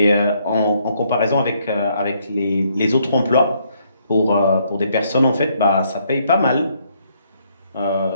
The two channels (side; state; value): both; inverted; correlation -0.71